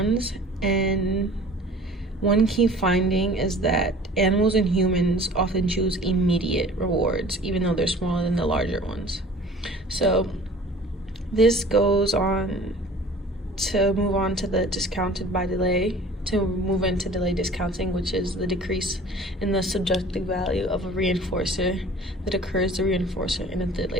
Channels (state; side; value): normal; both; correlation 0.46